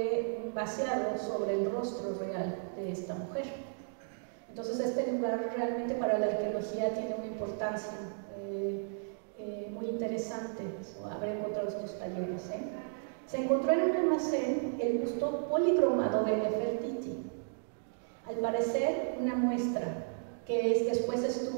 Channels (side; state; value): left; silent; digital silence